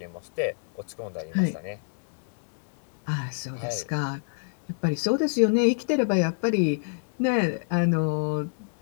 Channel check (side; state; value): right; silent; digital silence